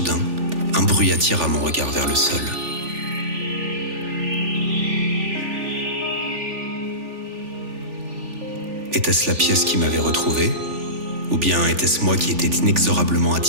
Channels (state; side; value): late; left; 3.4 ms